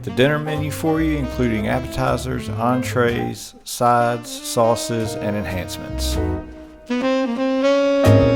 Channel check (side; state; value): both; identical; correlation 1.00